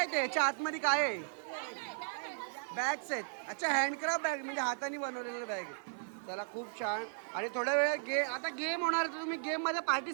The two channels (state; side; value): silent; left; 54 dB below the other